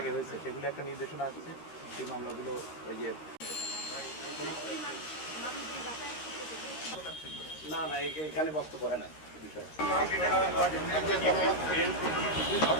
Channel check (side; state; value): right; late; 13 ms